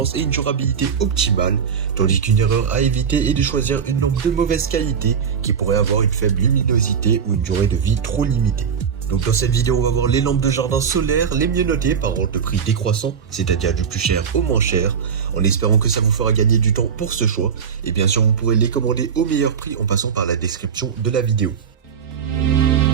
et une durabilité optimale, tandis qu'une erreur à éviter est de choisir une lampe de mauvaise qualité qui pourrait avoir une faible luminosité ou une durée de vie trop limitée. Donc dans cette vidéo, on va voir les lampes de jardin solaire les mieux notées par ordre de prix décroissant, c'est-à-dire du plus cher au moins cher, en espérant que ça vous fera gagner du temps pour ce choix. Et bien sûr, vous pourrez les commander au meilleur prix en passant par la description de la vidéo.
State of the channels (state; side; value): quieter; left; 7.0 dB